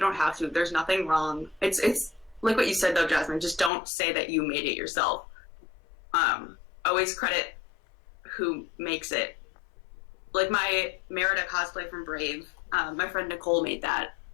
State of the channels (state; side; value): drops out; right; at 3.7 s